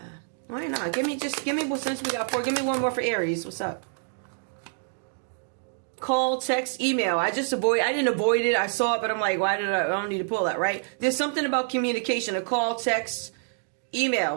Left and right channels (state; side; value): silent; left; digital silence